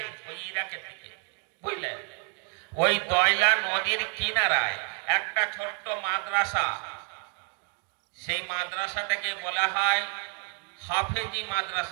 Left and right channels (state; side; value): quieter; left; 37.5 dB